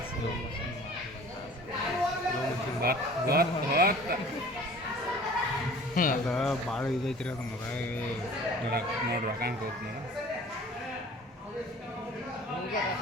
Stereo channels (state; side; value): normal; both; correlation 0.46